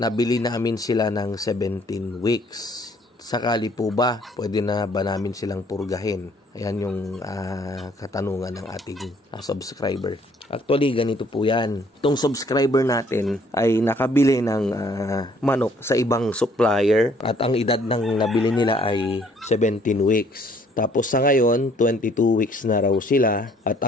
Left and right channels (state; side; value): normal; both; correlation 0.62